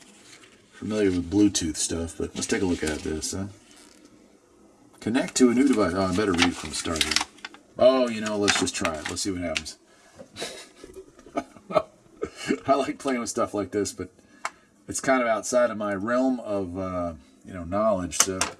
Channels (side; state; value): both; identical; correlation 1.00